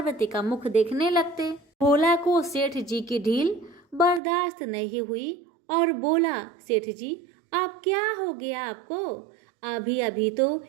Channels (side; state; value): left; drops out; at 4.2 s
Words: का मुख देखने लगते। भोला को सेठ जी की ढील बर्दाश्त नहीं हुई और बोला, सेठ जी अब क्या हो गया आपको? अभी अभी तो